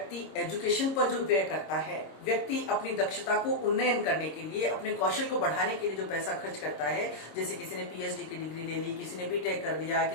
एजुकेशन पर जो व्यय करता है, व्यक्ति अपनी दक्षता को उन्नयन करने के लिए, अपने कौशल को बढ़ाने के लिए जो पैसा खर्च करता है, जैसे किसी ने पीएचडी की डिग्री ले ली, किसी ने बीटेक कर लिया,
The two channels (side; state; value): right; late; 26 ms